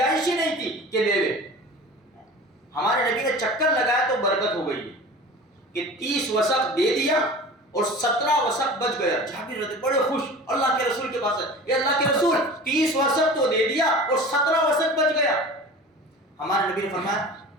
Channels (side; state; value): both; normal; correlation 0.37